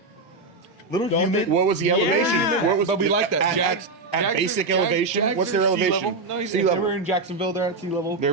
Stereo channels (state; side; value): quieter; left; 3.5 dB